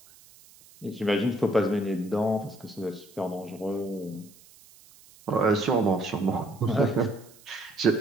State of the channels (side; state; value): right; noise; hiss, 25 dB below the sound